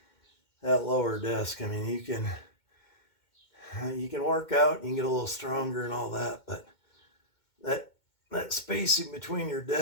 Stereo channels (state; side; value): late; right; 2.2 ms